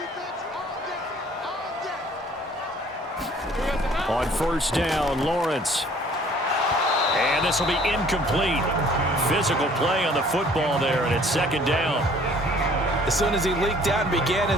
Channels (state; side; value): normal; both; correlation 0.55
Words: On first down, Lawrence. And this will be incomplete. Physical play on the football there, and it's second down. As soon as he leaked out and began